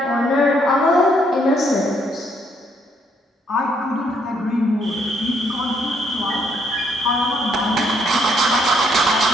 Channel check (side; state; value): both; normal; correlation 0.70